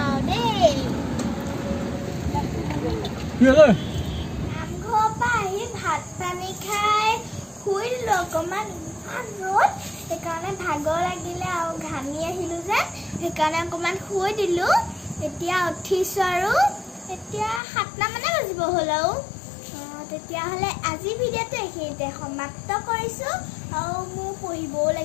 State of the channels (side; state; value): right; drops out; at 17.6 s